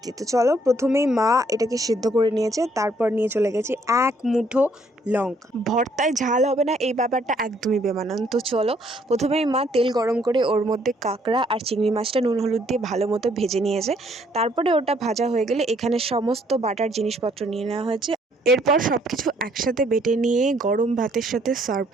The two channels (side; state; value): both; normal; correlation 0.66